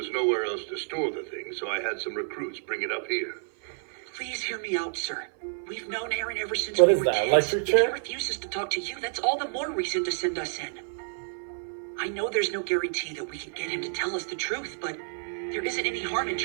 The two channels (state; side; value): silent; left; 56 dB below the other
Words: nowhere else to store the thing, so I had some recruits bring it up here. Please hear me out, sir. We've known Aaron ever since What we is were that, kids. electric If chair? he refuses to talk to you, that's all the more reason to send us in. I know there's no guarantee that we can get him to tell us the truth, but there isn't any harm in